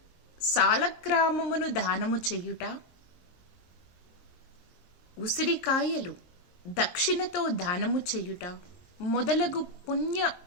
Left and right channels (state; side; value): late; right; 23 ms